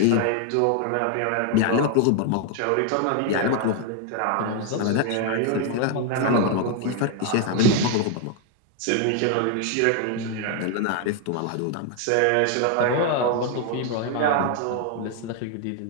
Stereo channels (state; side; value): different; both; correlation 0.00